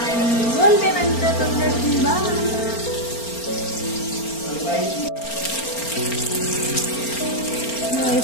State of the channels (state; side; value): late; right; 4.4 ms